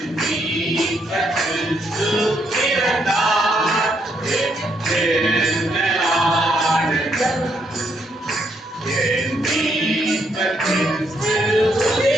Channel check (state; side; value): normal; both; correlation 0.75